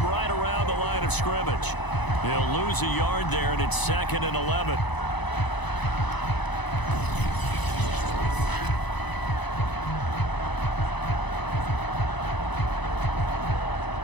right around the line of scrimmage. He'll lose a yard there, and it's 2nd and 11.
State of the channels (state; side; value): late; right; 1.0 ms